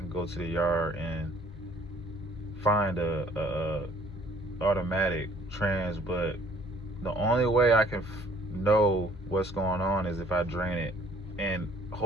go to the yard and find a automatic trans, but the only way I can know what's going on is if I drain it, and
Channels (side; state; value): both; normal; correlation 0.58